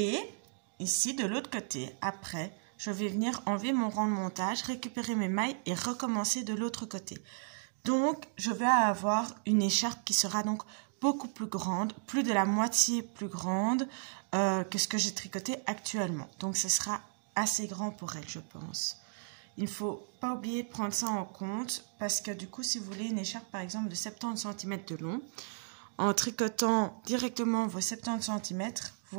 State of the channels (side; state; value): left; silent; 55 dB below the other